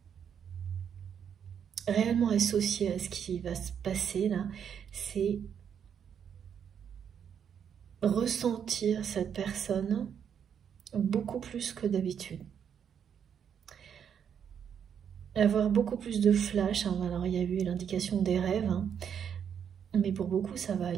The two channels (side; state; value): left; quieter; 8.1 dB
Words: réellement associé à ce qui va se passer là, c'est ressentir cette personne beaucoup plus que d'habitude. Avoir beaucoup plus de flash, hein. Alors il y a eu l'indication des rêves, hein. Mais pour beaucoup ça va